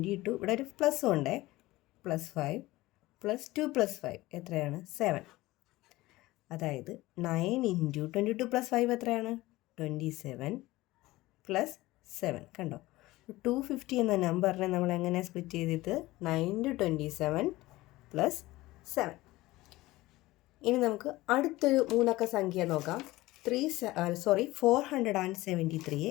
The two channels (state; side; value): quieter; right; 18.6 dB